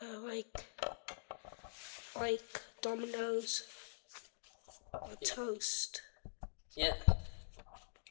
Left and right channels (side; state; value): right; silent; digital silence